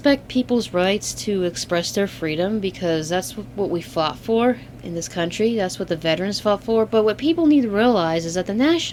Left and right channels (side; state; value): both; identical; correlation 1.00